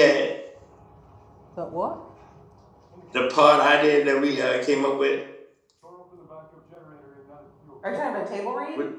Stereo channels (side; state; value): both; identical; correlation 1.00